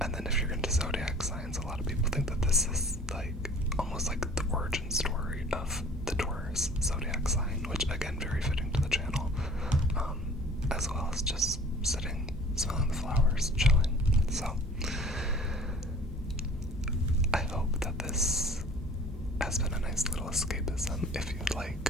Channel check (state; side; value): normal; both; correlation 0.49